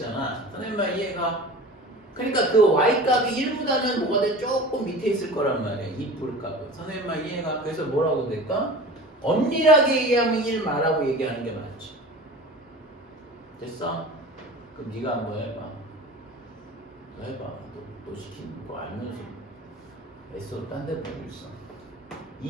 선생님만 이해가? 그러니까 그 y값이 1보다는 뭐가 돼? 조금 밑에 있을 거란 말이야. 2뿔 값은. 선생님만 이해가? 그래서 뭐라고 될까? 엄밀하게 얘기하면 1 말하고 얘기하는 게 맞지. 됐어? 그럼 네가 한번 해봐. 너 해봐. 너 시키는 거 알면서 애써 딴 데 보고 있어.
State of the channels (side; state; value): both; normal; correlation 0.37